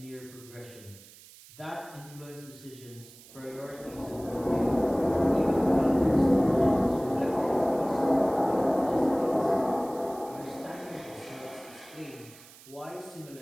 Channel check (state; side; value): noise; right; hiss, 21 dB below the sound